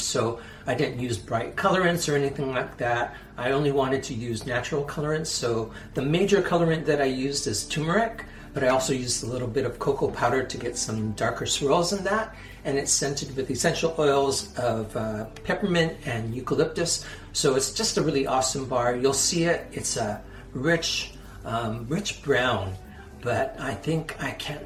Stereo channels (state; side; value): identical; both; correlation 1.00